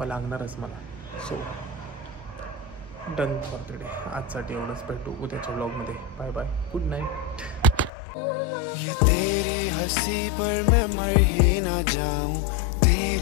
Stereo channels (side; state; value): right; drops out; at 7.9 s